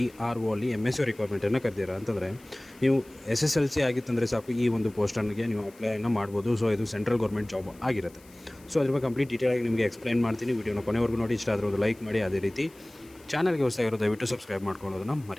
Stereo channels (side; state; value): left; noise; hiss, 26 dB below the sound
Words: ಅಲ್ಲಿ MSc ರಿಕ್ವೈರ್ಮೆಂಟನ್ನು ಕರೆದಿರ ಅಂತಂದರೆ ನೀವು SSLC ಆಗಿತ್ತಂದರೆ ಸಾಕು, ಈ ಒಂದು ಪೋಸ್ಟನ್ಗೆ ನೀವು ಅಪ್ಲೈನ ಮಾಡ್ಬೋದು. ಸೊ ಇದು ಸೆಂಟ್ರಲ್ ಗೌರ್ಮೆಂಟ್ ಜಾಬ್ ಆಗಿರುತ್ತೆ. ಸೊ ಅದ್ರ ಬಗ್ಗೆ ಕಂಪ್ಲೀಟ್ ಡೀಟೇಲಾಗಿ ನಿಮಗೆ ಎಕ್ಸ್ಪ್ಲೈನ್ ಮಾಡ್ತೀನಿ. ವಿಡಿಯೋನ ಕೊನೆವರೆಗೂ ನೋಡಿ. ಇಷ್ಟ ಆದರೆ ಒಂದು ಲೈಕ್ ಮಾಡಿ. ಅದೇ ರೀತಿ ಚಾನಲ್ಗೆ ಹೊಸದಾಗಿರೋ ದಯವಿಟ್ಟು ಸಬ್ಸ್ಕ್ರೈಬ್ ಮಾಡ್ಕೊಳ್ಳೋದನ್ನು